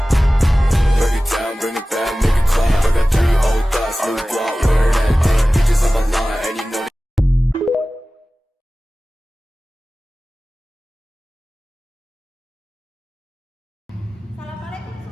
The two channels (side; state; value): both; normal; correlation 0.97